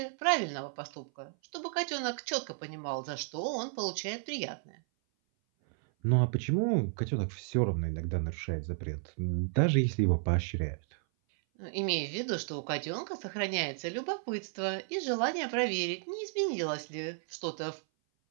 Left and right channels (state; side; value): silent; left; 56 dB below the other